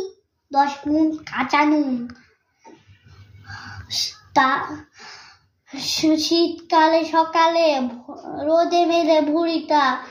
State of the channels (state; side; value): identical; both; correlation 1.00